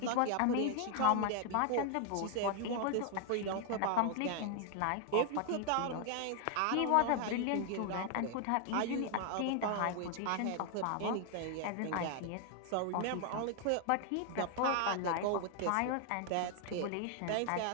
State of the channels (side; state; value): both; different; correlation 0.00